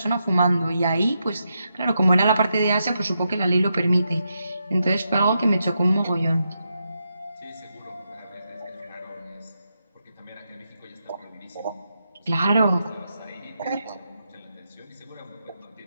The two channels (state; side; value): inverted; both; correlation -0.84